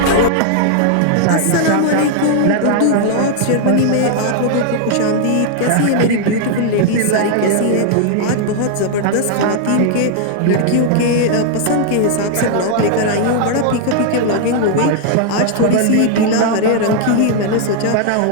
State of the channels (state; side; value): different; both; correlation 0.00